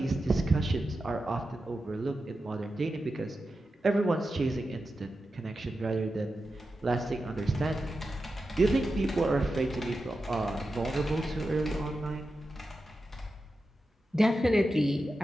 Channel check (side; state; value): both; normal; correlation 0.91